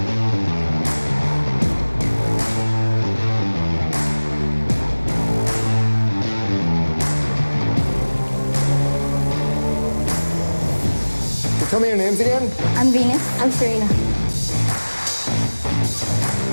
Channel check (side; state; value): both; inverted; correlation -1.00